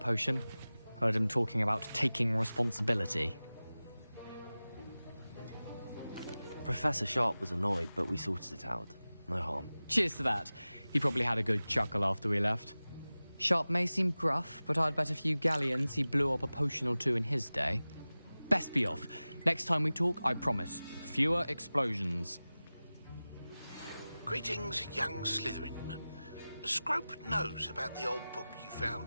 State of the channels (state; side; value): inverted; both; correlation -0.97